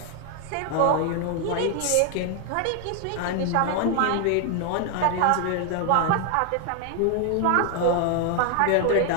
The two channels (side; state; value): both; different; correlation 0.00